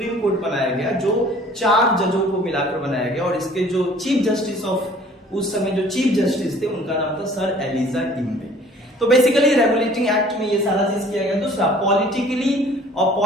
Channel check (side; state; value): both; normal; correlation 0.52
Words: कोर्ट बनाया गया जो 4 जजों को मिलाकर बनाया गया, और इसके जो चीफ जस्टिस ऑफ उस समय जो चीफ जस्टिस थे उनका नाम था सर एलिजा इम्बे। तो बेसिकली रेगुलेटिंग एक्ट में ये सारा चीज किया गया। दूसरा, पॉलिटिकली और